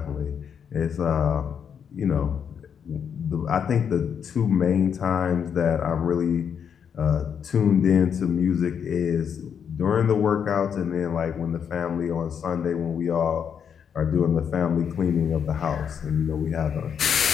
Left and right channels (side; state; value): right; quieter; 7.6 dB